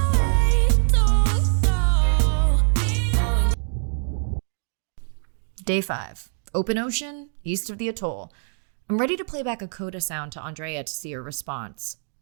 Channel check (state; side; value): silent; left; 59 dB below the other